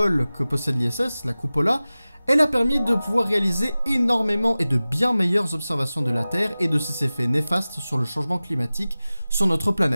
que possède l'ISS, la Cupola, elle a permis de pouvoir réaliser énormément et de bien meilleures observations de la Terre et de ses effets néfastes sur le changement climatique sur notre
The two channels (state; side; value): inverted; both; correlation -0.97